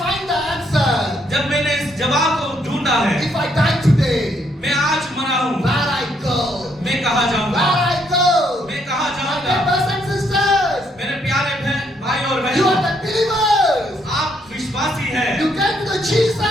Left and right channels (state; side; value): normal; both; correlation 0.72